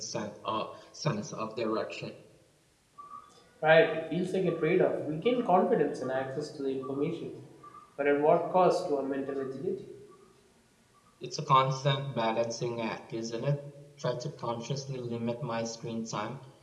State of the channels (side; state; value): both; identical; correlation 1.00